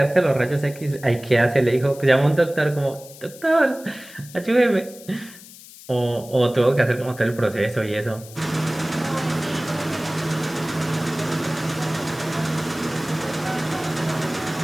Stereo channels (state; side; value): noise; left; hiss, 19 dB below the sound